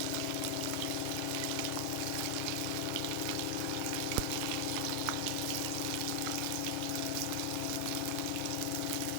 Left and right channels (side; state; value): both; different; correlation 0.00